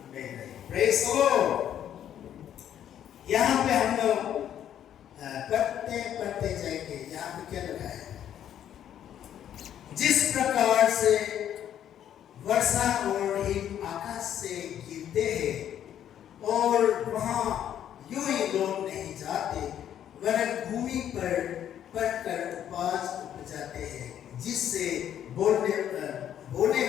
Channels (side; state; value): right; quieter; 10.3 dB